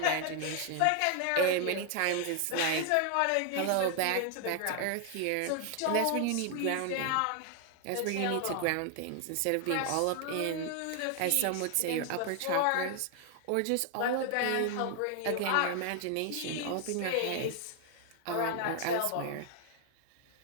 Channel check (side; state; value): both; different; correlation 0.00